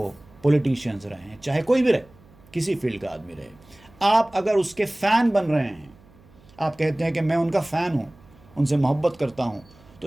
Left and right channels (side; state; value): right; noise; hum, 27 dB below the sound